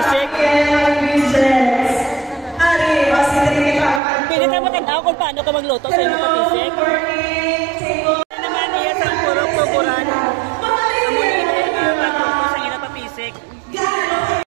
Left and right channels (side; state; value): left; drops out; at 4.0 s